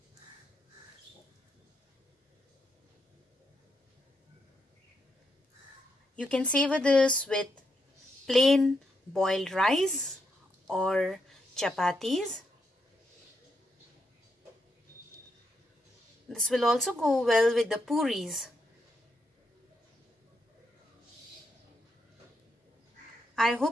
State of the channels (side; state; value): both; normal; correlation 0.81